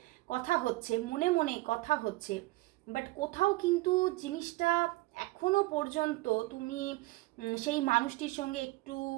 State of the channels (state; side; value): quieter; left; 20.5 dB